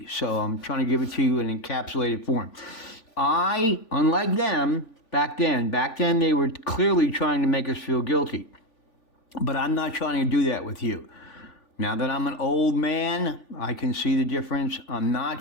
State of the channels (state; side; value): late; right; 3.4 ms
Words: so I'm trying to give it to you in encapsulated form. Unlike them, back then they were clearly trying to make us feel guilty, but I'm not trying to do that with you. Now that I'm an old man, I can see the difference. I'm not